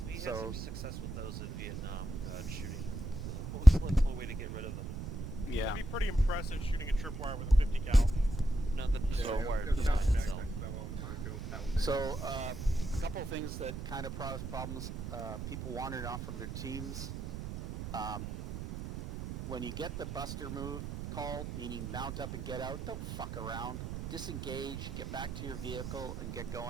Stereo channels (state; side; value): noise; right; rumble, 6 dB below the sound